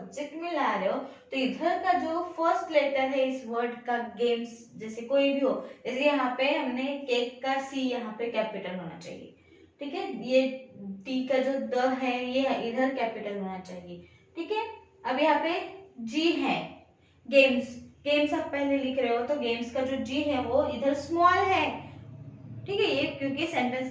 में ला रहे हो, तो इधर का जो फर्स्ट लेटर है इस वर्ड का, गेम्स जैसे कोई भी हो, जैसे यहाँ पे हमने केक का सी यहाँ पे कैपिटल होना चाहिए, ठीक है। ये टी का जो द है ये इधर कैपिटल होना चाहिए, ठीक है। अब यहाँ पे जी है, गेम्स, गेम्स आप पहले लिख रहे हो तो गेम्स का जो जी है वो इधर स्मॉल है, ठीक है। ये क्योंकि सेंटेंस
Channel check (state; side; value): identical; both; correlation 1.00